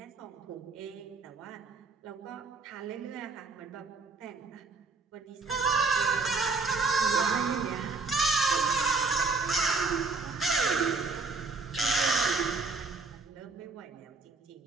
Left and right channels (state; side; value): quieter; left; 4.0 dB